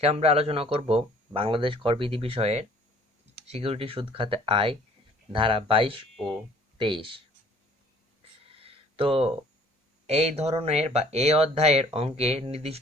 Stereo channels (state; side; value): normal; both; correlation 0.55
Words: আমরা আলোচনা করব বাংলাদেশ করবিধি বিষয়ের সিকিউরিটি সুদ খাতে আয় ধারা 22 ও 23। তো এই ধরনের বা এই অধ্যায়ের অঙ্কে